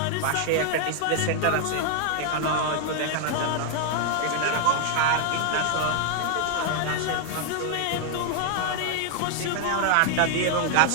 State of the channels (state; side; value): different; both; correlation 0.00